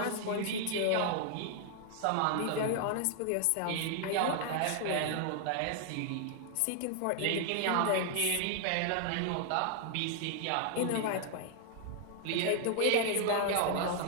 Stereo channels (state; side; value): different; both; correlation 0.00